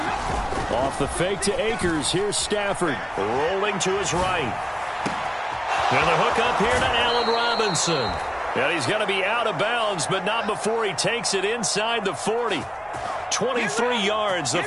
Off the fake to Akers. Here's Stafford rolling to his right. And the hook up here to Allen Robinson. And he's going to be out of bounds, but not before he takes it inside the 40. 23 yards, the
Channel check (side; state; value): both; identical; correlation 1.00